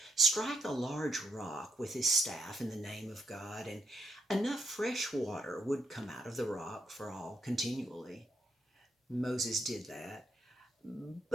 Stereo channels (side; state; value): both; normal; correlation 0.78